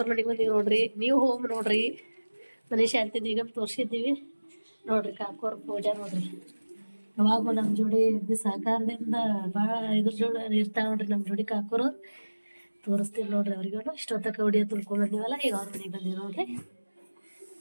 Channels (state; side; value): inverted; both; correlation -1.00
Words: ಮನೆಗೆ ಬಂದೀವಿ ನೋಡ್ರಿ. ನೀವು ಹೋಗಿ ನೋಡ್ರಿ, ಮನೆ ಶಾಂತಿ ಈಗ ತೋರ್ಸಿದ್ದೀವಿ ನೋಡ್ರಿ. ಕಾಕೋರ್ ಪೂಜೆ ನೋಡ್ರಿ, ಯಾವಾಗೂ ನಮ್ಮ ಜೋಡಿ ಸಹಕಾರದಿಂದ ಭಾಳ ಇದ್ರ ಜೋಡಿ ಇರ್ತಾವ ನೋಡ್ರಿ ನಮ್ಮ ಜೋಡಿ ಕಾಕೋರು. ತೋರಿಸ್ತೀವಿ ನೋಡ್ರಿ ಅವ್ರಿಗೂ. ಇಷ್ಟೊತ್ತಕ ಹೊಡಿಯೋ ತುಳ್ಕೊಂಡ್ ಬಂದೀವಲ್ಲ, ಈಗ ಅವ್ರ ಮನೆಗೆ ಬಂದೀವಿ ನೋಡ್ರಿ.